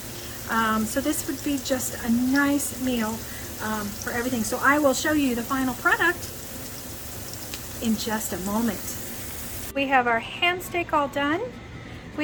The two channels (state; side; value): identical; both; correlation 1.00